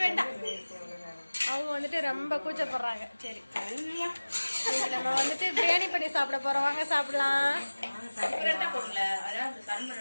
வேண்டாம், அவங்க வந்துட்டு ரொம்ப கூச்சப்படுறாங்க. சரி நம்ம வந்துட்டு பிரியாணி பண்ணி சாப்பிட போறோம், வாங்க சாப்பிடலாம்.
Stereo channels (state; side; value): inverted; both; correlation -1.00